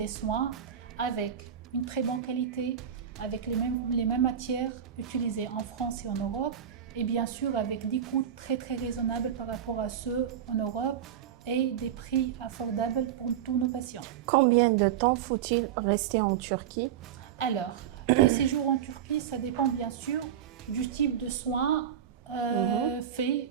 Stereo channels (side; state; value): left; quieter; 9.4 dB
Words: soins avec une très bonne qualité, avec les mêmes matières utilisées en France et en Europe, et bien sûr avec des coûts très raisonnables par rapport à ceux en Europe et des prix affordables pour tous nos patients. Combien de temps faut-il rester en Turquie? Alors, le séjour en Turquie, ça dépend bien sûr du type de soins faits